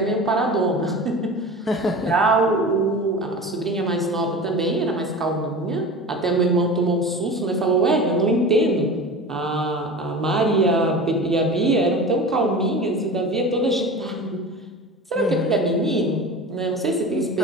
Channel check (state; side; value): normal; both; correlation 0.34